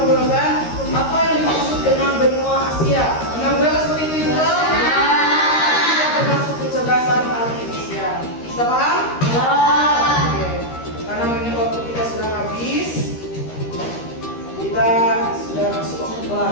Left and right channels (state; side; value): late; right; 13 ms